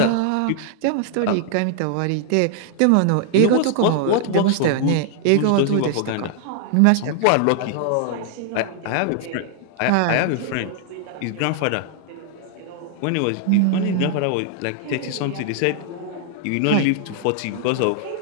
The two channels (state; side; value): different; both; correlation 0.00